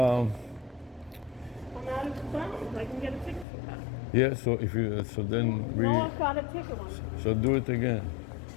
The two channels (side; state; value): right; drops out; at 3.5 s